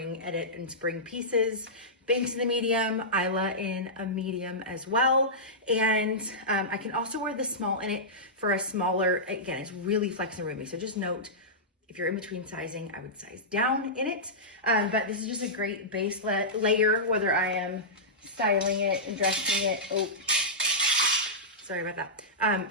edit and spring pieces. Banks in the medium, Isla in a medium as well. And I can also wear the small in it for a smaller, again, it's really flex and roomy. So just note, if you're in between sizing, I would size down in it. But this is just a great base layer, whether I am styling it and dressing it. Oh, sorry about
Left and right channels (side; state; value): both; normal; correlation -0.15